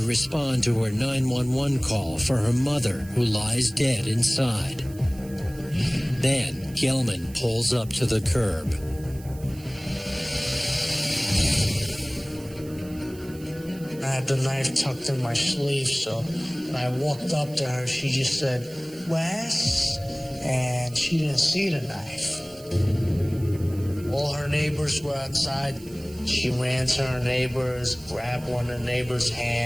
respond to her 911 call for her mother, who lies dead inside. Then, Gelman pulls up to the curb. I had the knife tucked in my sleeve, so when I walked up to her, she just said, "Wes?" And she didn't see the knife. All her neighbors were outside. She ran to her neighbors, grabbed one of the neighbors'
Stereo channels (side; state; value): right; noise; hiss, 21 dB below the sound